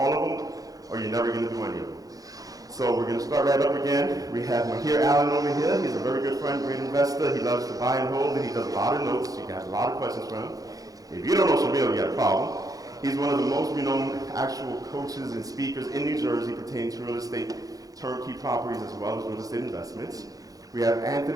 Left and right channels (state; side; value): late; left; 0.17 ms